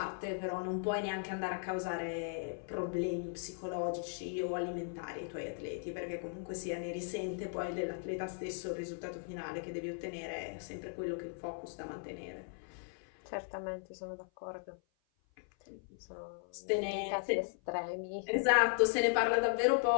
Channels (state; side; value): silent; right; 53 dB below the other